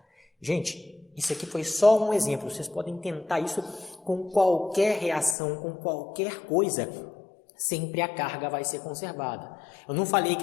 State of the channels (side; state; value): right; drops out; at 5.4 s